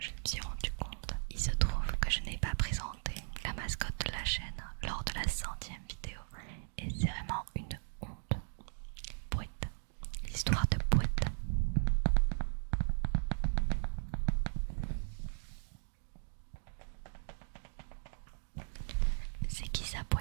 me suis rendu compte, il se trouve que je n'ai pas présenté la mascotte de la chaîne lors de la 100e vidéo. Et c'est vraiment une honte. Pouette, l'histoire de Pouette. C'est qui ça,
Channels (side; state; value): left; silent; digital silence